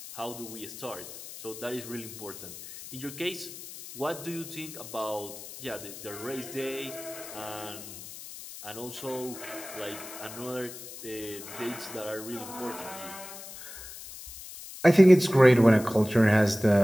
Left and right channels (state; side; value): noise; left; hiss, 13 dB below the sound